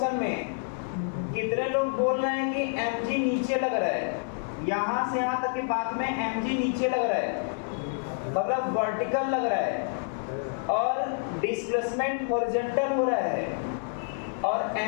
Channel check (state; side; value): silent; right; 59 dB below the other